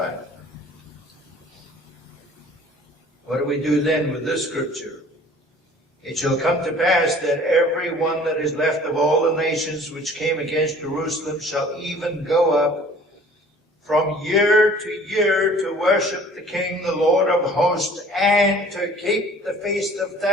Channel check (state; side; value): normal; both; correlation 0.50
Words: What do we do then with this scripture? It shall come to pass that every one that is left of all the nations which came against Jerusalem shall even go up from year to year to worship the King, the Lord of hosts, and to keep the Feast of